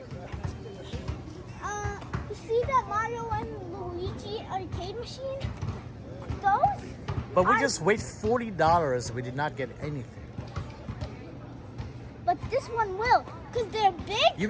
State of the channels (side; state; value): both; identical; correlation 1.00